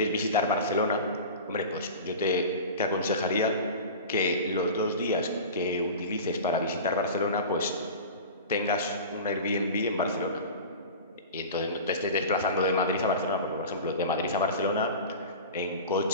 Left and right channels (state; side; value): inverted; both; correlation -0.33